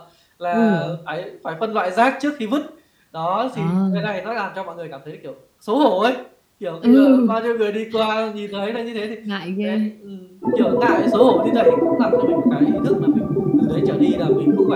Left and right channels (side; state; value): both; identical; correlation 1.00